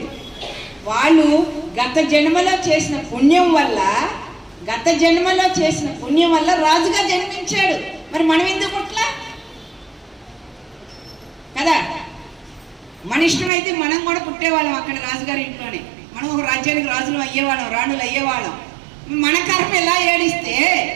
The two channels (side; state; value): left; drops out; at 13.5 s